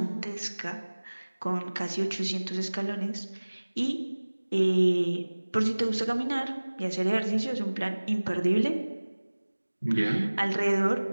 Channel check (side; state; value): both; inverted; correlation -1.00